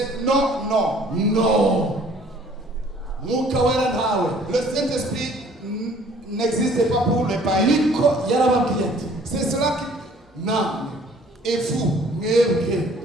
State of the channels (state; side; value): normal; both; correlation 0.55